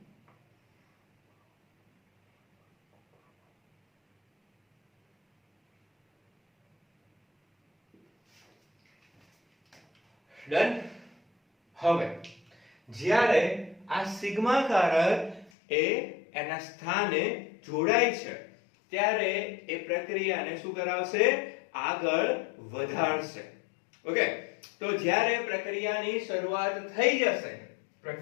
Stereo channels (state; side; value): drops out; right; at 15.5 s